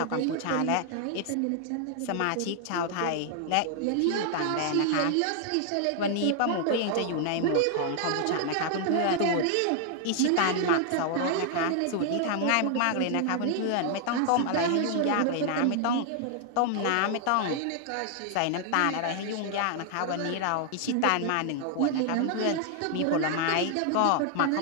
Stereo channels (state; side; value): different; both; correlation 0.00